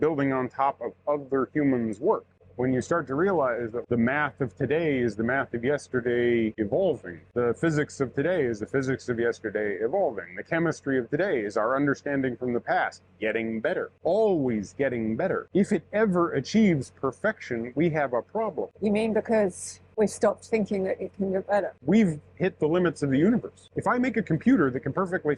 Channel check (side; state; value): both; identical; correlation 1.00